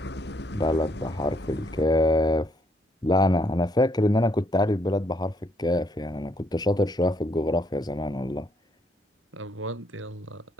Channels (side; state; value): both; normal; correlation 0.71